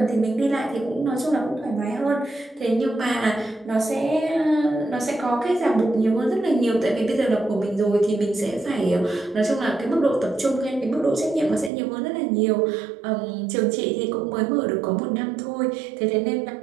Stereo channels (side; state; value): left; drops out; at 11.7 s